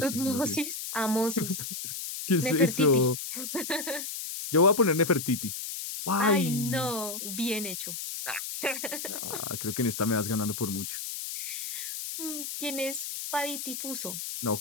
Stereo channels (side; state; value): left; noise; hiss, 6 dB below the sound